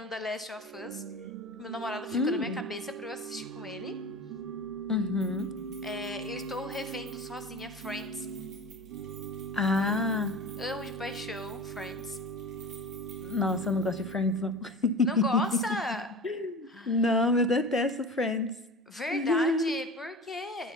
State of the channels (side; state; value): both; normal; correlation 0.34